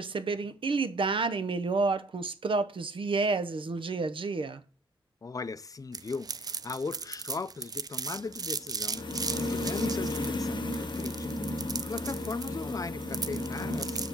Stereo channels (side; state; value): both; normal; correlation 0.55